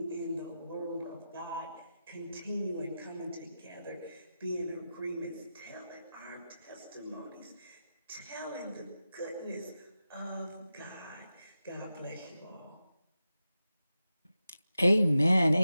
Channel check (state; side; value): inverted; both; correlation -0.92